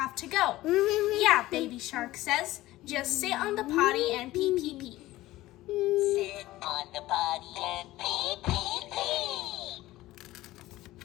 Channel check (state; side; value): quieter; right; 16.8 dB